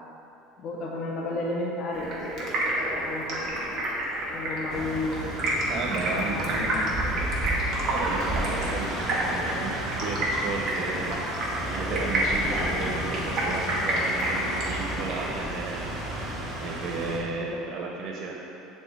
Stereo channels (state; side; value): normal; both; correlation 0.45